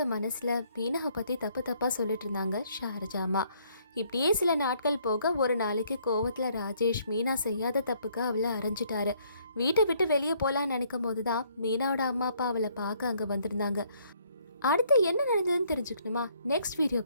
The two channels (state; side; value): inverted; both; correlation -0.65